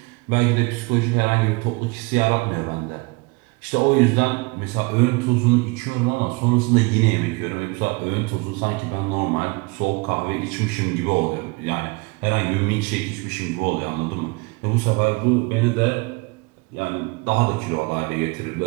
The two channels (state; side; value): quieter; left; 27.0 dB